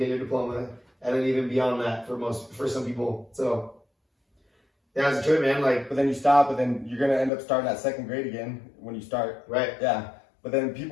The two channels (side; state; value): right; drops out; at 7.3 s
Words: your diploma. And then even beyond that for some people. So yeah, it's a trip, man. Like, but then you stop, but then you're going to end up starting at 2nd grade again when you start. Right. Yeah. But then